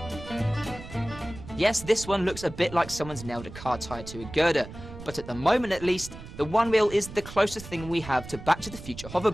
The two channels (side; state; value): right; noise; rumble, 14 dB below the sound